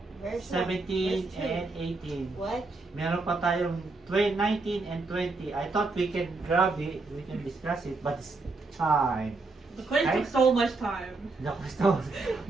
Verse 17, 1. and 18. What? Meron pa tayong 19 and 20. I thought we can grab it, we can discuss it, but it's time. The quiz Right? took so much time. The question.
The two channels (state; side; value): quieter; left; 3.5 dB